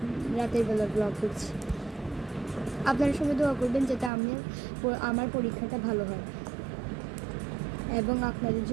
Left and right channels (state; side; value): drops out; left; at 4.1 s